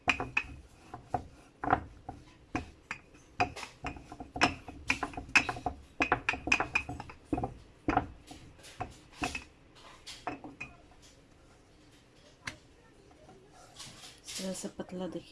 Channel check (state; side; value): identical; both; correlation 1.00